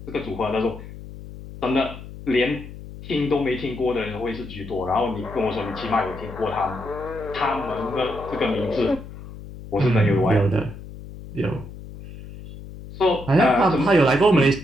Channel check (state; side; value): noise; left; hum, 14 dB below the sound